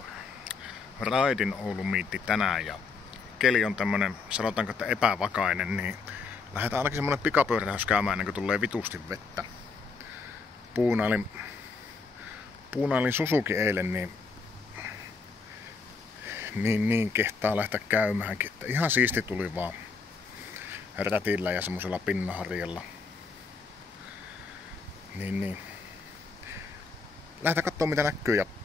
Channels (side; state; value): right; quieter; 4.6 dB